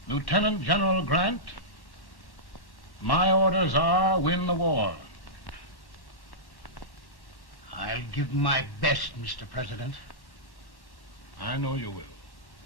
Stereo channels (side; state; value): left; late; 4.3 ms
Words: Lieutenant General Grant, my orders are win the war. I'll give my best, Mr. President. I know you will.